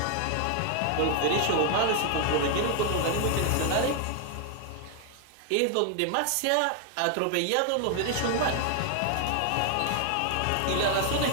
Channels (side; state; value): both; different; correlation 0.00